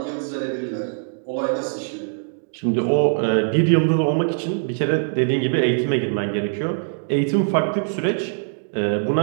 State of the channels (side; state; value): left; silent; digital silence